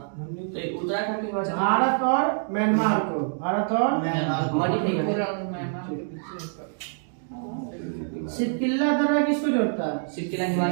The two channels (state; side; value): silent; left; digital silence